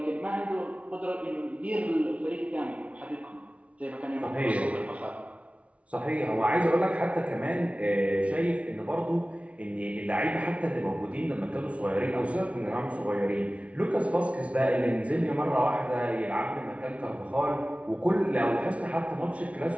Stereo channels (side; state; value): left; late; 0.064 ms